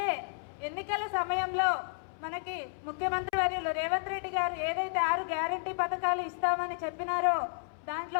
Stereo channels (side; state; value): right; silent; 56 dB below the other